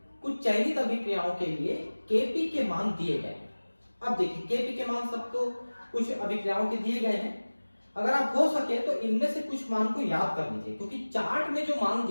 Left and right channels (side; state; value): both; inverted; correlation -1.00